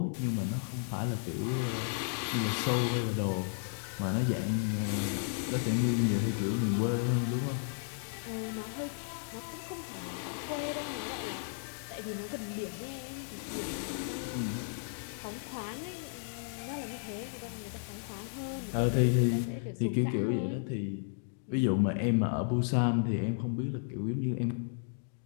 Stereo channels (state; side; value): silent; right; digital silence